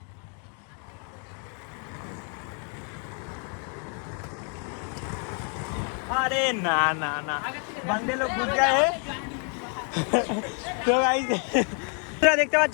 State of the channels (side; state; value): right; quieter; 39.9 dB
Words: আরে না বাংলা লোক ঘুর যায়। তো গাইস, তোমরা দেখতে